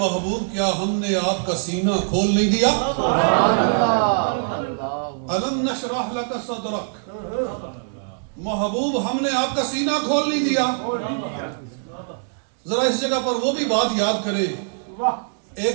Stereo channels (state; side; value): silent; left; digital silence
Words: کیا ہم نے آپ کا سینہ کھول نہیں دیا؟ الم نشرح لک صدرک، محبوب ہم نے آپ کا سینہ کھول نہیں دیا؟ ذرا اس جگہ پر وہ بھی بات یاد کریں، ایک